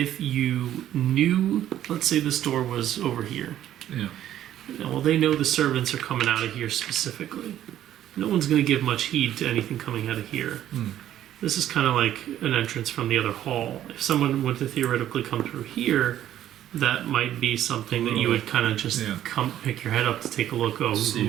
you knew, let's say this door was over here. Yeah. Well, they know the servants are coming out of here specifically. No one's going to give much heed to anything coming out of here. This is kind of like an entrance from the other hall. If someone were to theoretically come through here, that might be something that you would kind of just come pick your head up to take a look. Oh,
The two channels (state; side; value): quieter; left; 11.8 dB